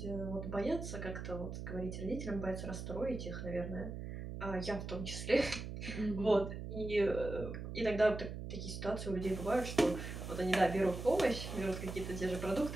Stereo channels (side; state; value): right; noise; hum, 7 dB below the sound